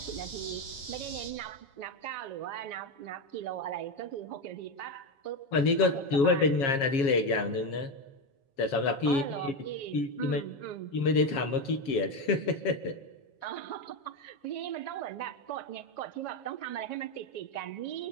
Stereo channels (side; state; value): right; late; 7.3 ms